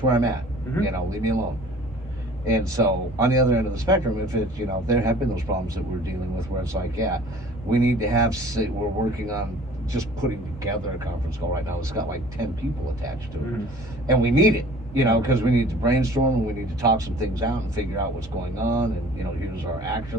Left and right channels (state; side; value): normal; both; correlation 0.48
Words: where I'm at. Leave me alone. And so on the other end of the spectrum, if it's, there have been those problems that we're dealing with where it's like, yeah, we need to we're working on just putting together a conference call right now. It's got like 10 people attached to it. And we need it, because we need to brainstorm and we need to talk some things out and figure out what's going on. And, here's our